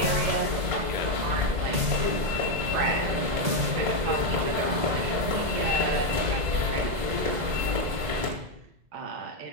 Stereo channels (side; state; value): left; late; 1.8 ms